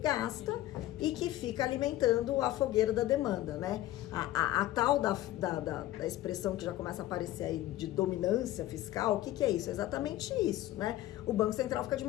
gasta e que fica alimentando a fogueira da demanda, né? A tal da expressão que já começa a aparecer aí de dominância fiscal, o que é isso? É exatamente isso, né? O Banco Central fica de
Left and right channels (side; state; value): right; quieter; 15.1 dB